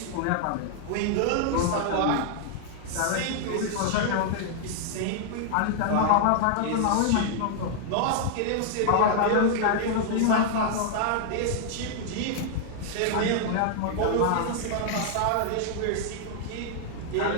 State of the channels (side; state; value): both; different; correlation -0.01